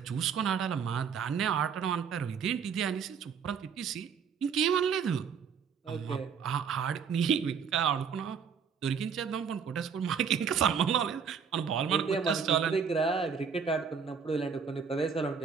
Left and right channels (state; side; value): quieter; left; 6.6 dB